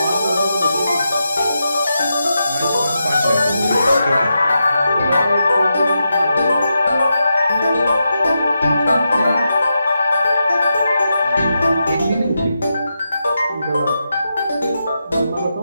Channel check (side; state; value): both; inverted; correlation -0.87